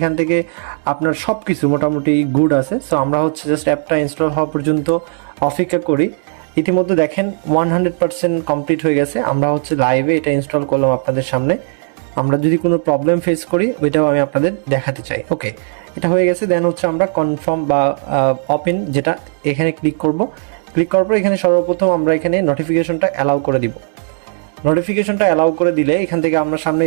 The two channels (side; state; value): left; silent; 59 dB below the other